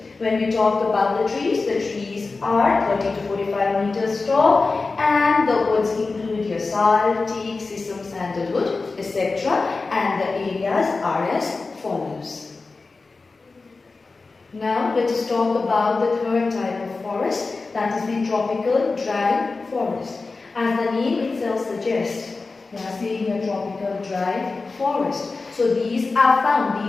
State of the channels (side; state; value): right; quieter; 3.9 dB